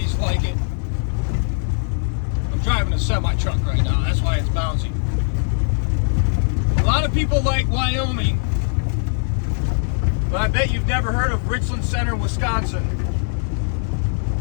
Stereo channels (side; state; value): right; silent; digital silence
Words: like it. I'm driving a semi-truck right now. That's why it's bouncy. A lot of people like Wyoming, but I bet you've never heard of Richland Center, Wisconsin,